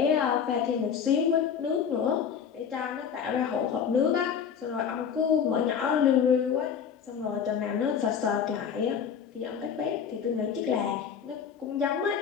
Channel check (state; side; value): quieter; right; 7.4 dB